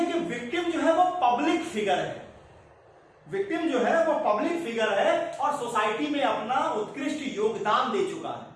कि विक्टिम जो है वो पब्लिक फिगर है, विक्टिम जो है वो पब्लिक फिगर है और सोसाइटी में अपना उत्कृष्ट योगदान दे चुका है।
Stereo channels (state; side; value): identical; both; correlation 1.00